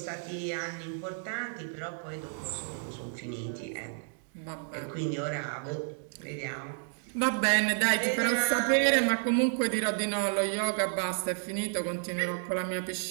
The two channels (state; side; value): silent; left; digital silence